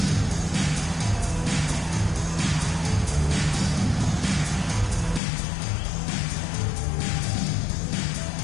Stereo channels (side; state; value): right; drops out; at 5.2 s